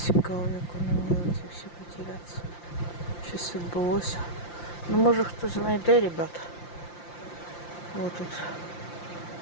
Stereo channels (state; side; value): late; right; 5.8 ms